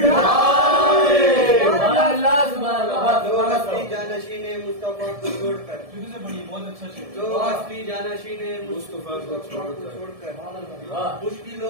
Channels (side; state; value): left; late; 1.7 ms